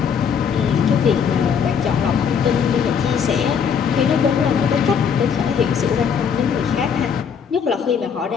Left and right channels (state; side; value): quieter; right; 7.0 dB